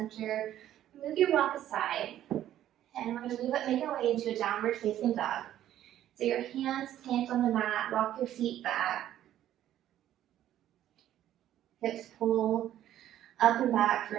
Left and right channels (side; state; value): left; quieter; 12.1 dB